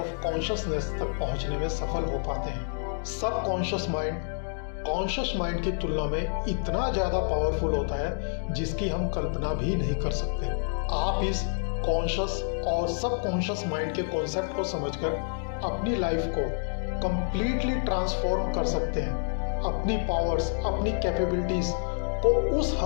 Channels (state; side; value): silent; right; digital silence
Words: consciousness तक पहुंचने में सफल हो पाते हैं। सब कॉन्शियस माइंड कॉन्शियस माइंड की तुलना में इतना ज़्यादा पावरफुल होता है जिसकी हम कल्पना भी नहीं कर सकते। आप इस कॉन्शियस और सब कॉन्शियस माइंड के कॉन्सेप्ट को समझकर अपनी लाइफ को कंप्लीटली ट्रांसफॉर्म कर सकते हैं। अपनी पावर्स, अपनी कैपेबिलिटीज को उस